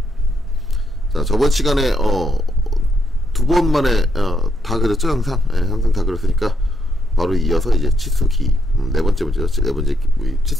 자, 저번 시간에 두 번 만에 다 그렸죠, 항상. 항상 다 그렸으니까 바로 이어서 이제 치수 기입, 네 번째 문제죠. 네 번째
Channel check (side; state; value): both; normal; correlation 0.78